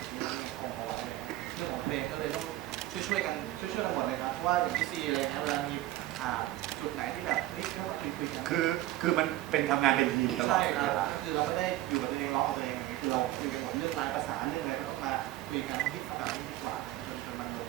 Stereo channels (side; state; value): left; quieter; 15.6 dB